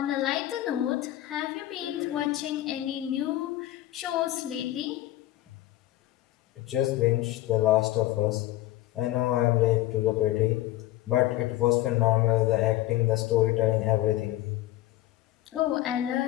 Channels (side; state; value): right; quieter; 15.5 dB